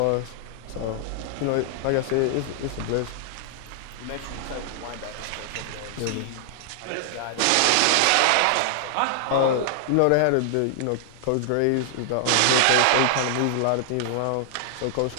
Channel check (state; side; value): different; both; correlation -0.01